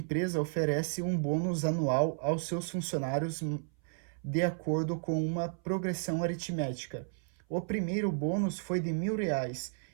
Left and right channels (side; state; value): left; silent; 56 dB below the other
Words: oferece um bônus anual aos seus funcionários de acordo com uma progressão aritmética. O primeiro bônus foi de R$ 1.000